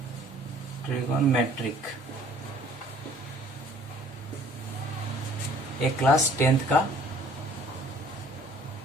ट्रिगोनोमेट्रिक एक क्लास 10th का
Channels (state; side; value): normal; both; correlation 0.55